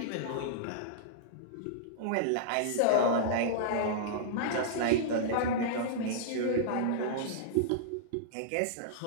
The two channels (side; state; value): both; different; correlation -0.03